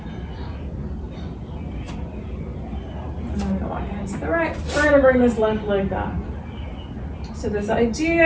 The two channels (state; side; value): identical; both; correlation 1.00